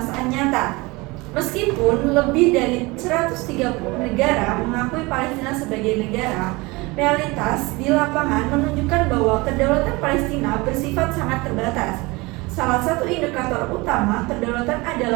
nyata. Meskipun lebih dari 130 negara mengakui Palestina sebagai negara, realitas di lapangan menunjukkan bahwa kedaulatan Palestina bersifat sangat terbatas. Salah satu indikator utama kedaulatan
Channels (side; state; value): left; quieter; 23.9 dB